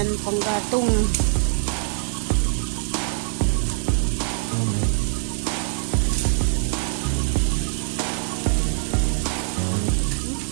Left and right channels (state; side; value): silent; left; digital silence